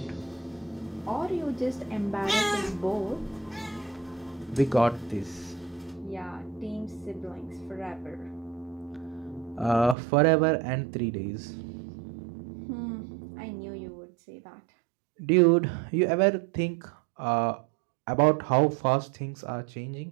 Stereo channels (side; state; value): left; drops out; at 10.0 s